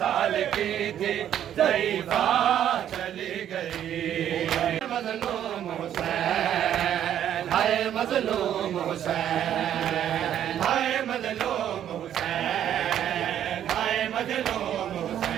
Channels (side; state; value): left; quieter; 10.4 dB